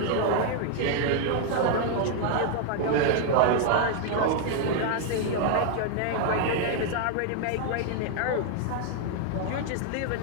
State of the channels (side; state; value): both; different; correlation 0.00